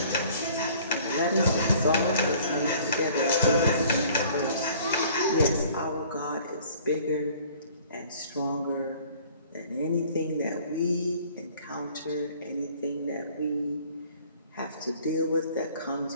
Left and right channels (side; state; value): both; inverted; correlation -0.53